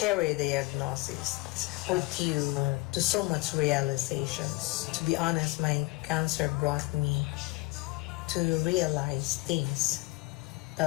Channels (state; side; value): quieter; right; 23.8 dB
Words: diagnosis put you to so much realizations. To be honest, my cancer brought me to realize things,